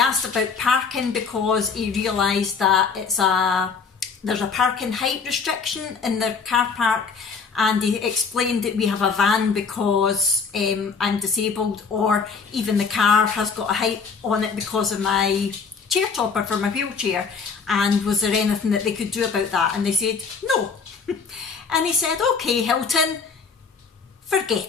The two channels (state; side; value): quieter; right; 5.4 dB